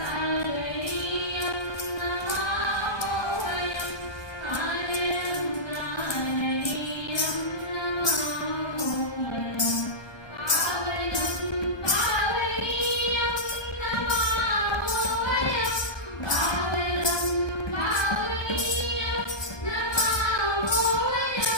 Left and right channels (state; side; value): late; right; 1.2 ms